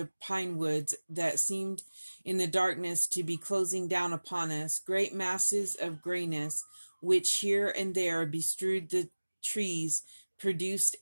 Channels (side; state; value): both; inverted; correlation -1.00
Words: pine woods that seemed in the darkness to be closing down upon us, great masses of grayness, which here and there bestrewed the trees, produced